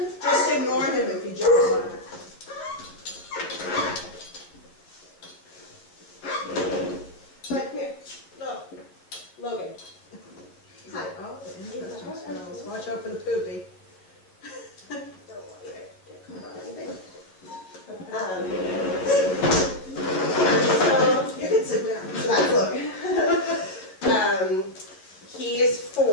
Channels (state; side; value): late; right; 11 ms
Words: Just ignore him if he jumps on it. But come here. Look. Logan. Hi. Oh, interesting smells. Watch out for the poopy. Don't want you to get caught on anything. So You can sit down. So that's Logan. He is